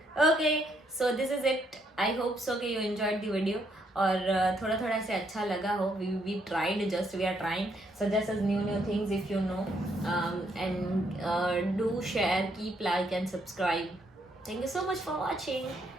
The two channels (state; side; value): normal; both; correlation 0.73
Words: Okay, so this is it. I hope so कि यू एंजॉयड द वीडियो और थोड़ा थोड़ा से अच्छा लगा हो। We tried, just we are trying, suggest us new things if you know, and do share, keep like and subscribe. Thank you so much for watching.